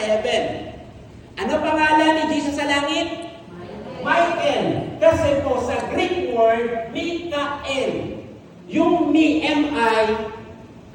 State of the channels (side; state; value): both; identical; correlation 1.00